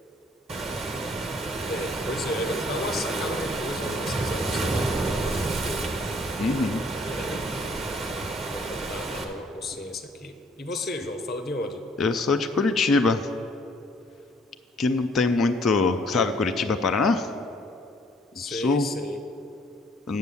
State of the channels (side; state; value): both; normal; correlation 0.62